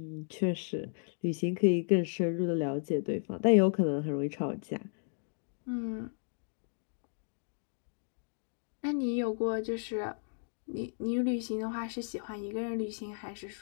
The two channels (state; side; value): silent; right; digital silence